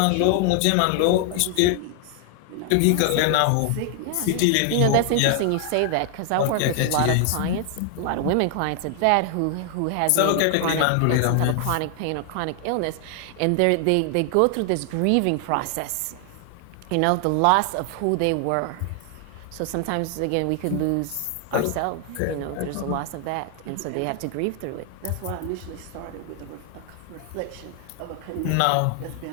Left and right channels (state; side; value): different; both; correlation 0.00